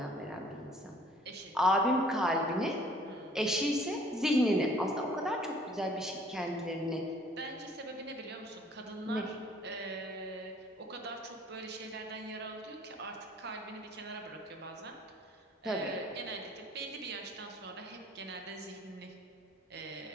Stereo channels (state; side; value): normal; both; correlation 0.56